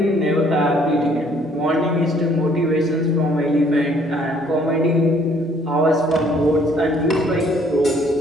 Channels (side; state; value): both; normal; correlation 0.62